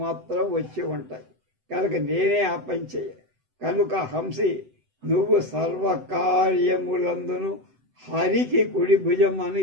మాత్రం వచ్చి ఉంటాయి కనుక నేనే ఆ పని చేయ. కనుక హంసి నువ్వు సర్వకార్యములందును హరికి కుడి భుజం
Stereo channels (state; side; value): late; left; 7.9 ms